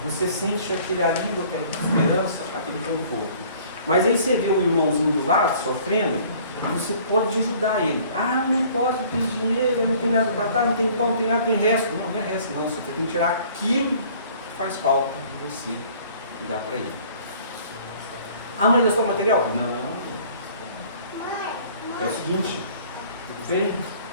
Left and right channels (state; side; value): inverted; both; correlation -0.53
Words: você sente aquele alívio, aquela esperança, aquele conforto. Mas aí você vê o irmãozinho do lado sofrendo, você pode ajudar ele. Ah, não posso, não tenho dinheiro, eu não tenho nada para dar, não tem pão, não tem nada, tem resto. Não, não é resto não, você tem que tirar aquilo que faz falta de você e dar para ele. Ah, mas eu sou material? Não. É o seguinte, vem.